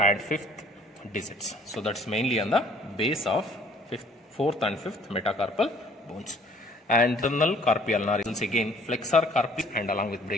5th digits. So that's mainly on the base of 4th and 5th metacarpal bones. And internal carpi ulnaris, again flexor carpi and along with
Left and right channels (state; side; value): normal; both; correlation 0.57